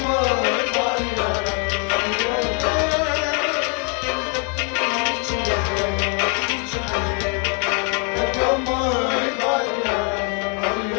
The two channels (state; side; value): quieter; right; 38.1 dB